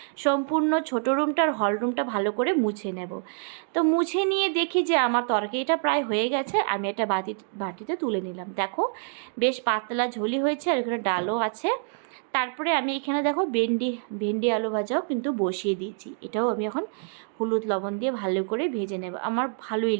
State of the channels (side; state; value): left; silent; 61 dB below the other